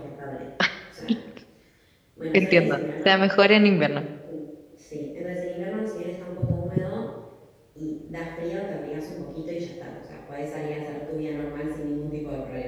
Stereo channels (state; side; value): identical; both; correlation 1.00